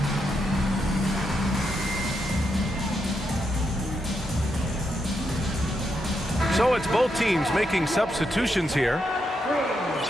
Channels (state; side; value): normal; both; correlation 0.82